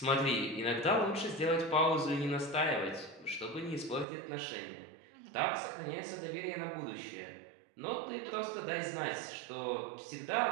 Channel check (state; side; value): drops out; left; at 4.0 s